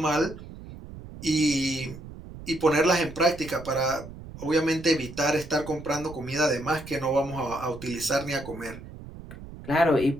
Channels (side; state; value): right; noise; rumble, 14 dB below the sound